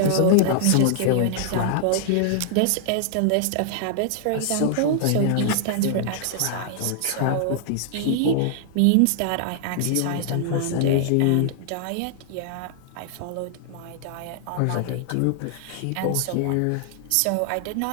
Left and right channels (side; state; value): both; different; correlation -0.01